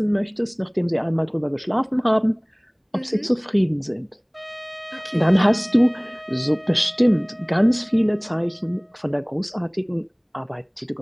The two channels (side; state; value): both; identical; correlation 1.00